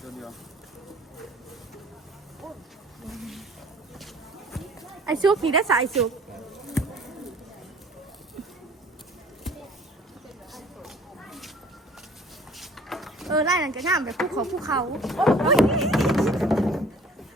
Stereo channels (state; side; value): normal; both; correlation 0.51